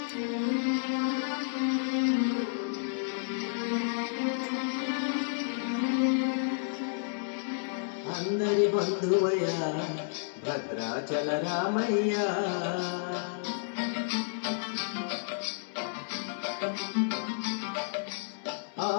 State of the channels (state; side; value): silent; right; 57 dB below the other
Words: అందరి బంధువయ్య భద్రాచల రామయ్య